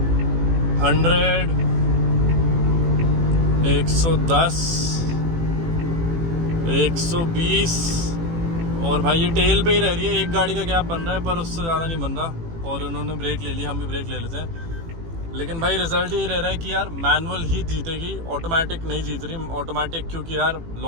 100, 110, 120। और भाई ये टेल पे ही रह रही है, एक गाड़ी का गैप बन रहा है पर उससे ज़्यादा नहीं बन रहा। और उन्होंने ब्रेक ले लिया, हम भी ब्रेक ले लेते हैं। लेकिन भाई रिजल्ट ये रह रहा है कि यार मैनुअल ही जीतेगी, ऑटोमेटिक नहीं जीत रही। ऑटोमेटिक क्योंकि यार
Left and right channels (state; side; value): late; left; 18 ms